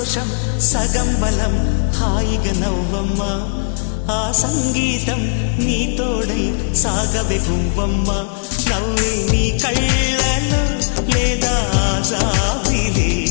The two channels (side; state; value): right; silent; 60 dB below the other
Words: సంతోషం సగం బలం హాయిగా నవ్వమ్మా ఆ సంగీతం నీ తోడై సాగవే గువ్వమ్మా నవ్వే నీ కళ్ళలో లేదా జాబిలే